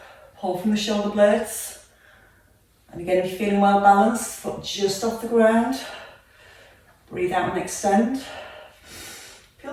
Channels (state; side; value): identical; both; correlation 1.00